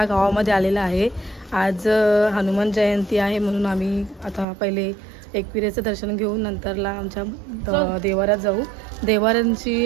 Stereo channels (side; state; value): left; drops out; at 4.5 s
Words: गावामध्ये आलेला आहे. आज हनुमान जयंती आहे म्हणून आम्ही आता पहिले एकविरेचं दर्शन घेऊन नंतरला आमच्या देवारात जाऊ. देवारांची